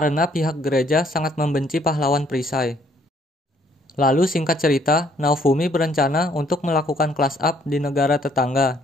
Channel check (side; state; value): both; normal; correlation 0.64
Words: pihak gereja sangat membenci pahlawan perisai. Lalu singkat cerita, Naofumi berencana untuk melakukan class up di negara tetangga,